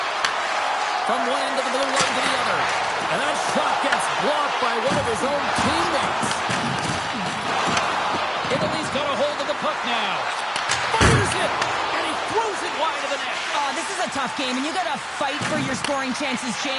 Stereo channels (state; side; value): identical; both; correlation 1.00